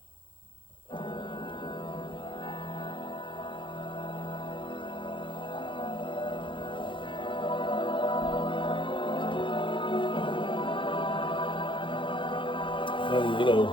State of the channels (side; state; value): right; late; 0.24 ms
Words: And you know,